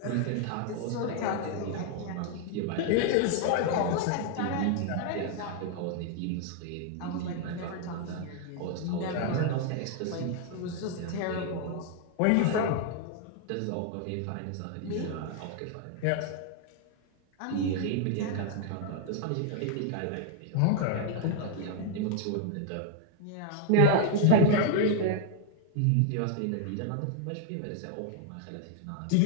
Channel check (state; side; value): different; both; correlation 0.00